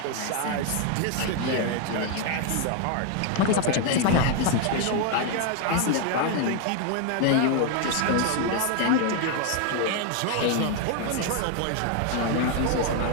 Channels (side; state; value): both; different; correlation 0.01